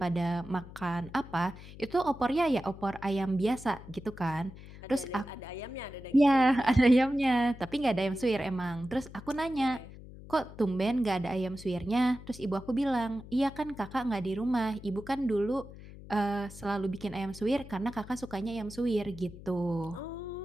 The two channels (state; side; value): noise; left; hum, 16 dB below the sound